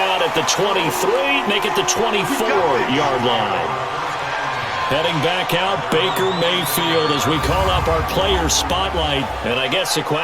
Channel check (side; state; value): both; identical; correlation 1.00